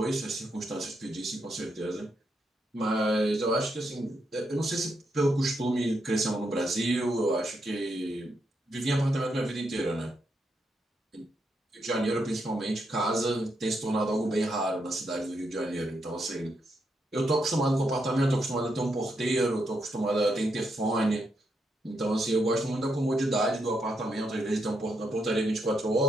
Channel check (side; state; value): both; normal; correlation 0.81